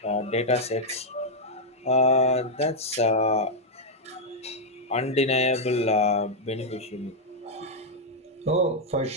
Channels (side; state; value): both; normal; correlation -0.02